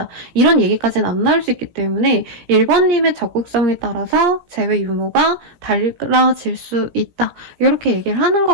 이런 얘기까지는 안 나올 수 있기 때문에 1번님의 적극성에 따라서 재회 유무가 달라질 수 있다. 이렇게 얘기를 하는 것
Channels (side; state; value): left; late; 17 ms